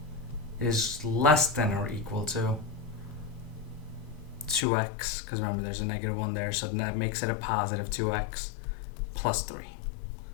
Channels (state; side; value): drops out; right; at 4.7 s